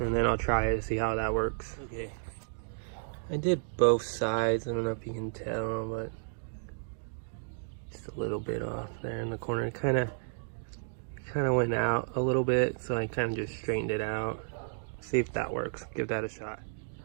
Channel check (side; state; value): left; silent; digital silence